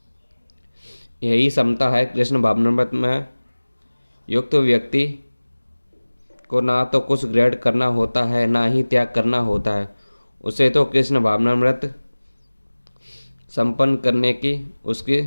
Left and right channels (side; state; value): both; inverted; correlation -1.00